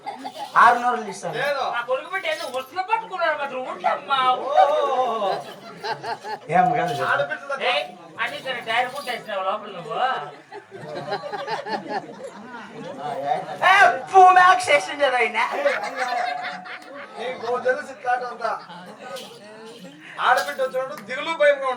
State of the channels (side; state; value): both; identical; correlation 1.00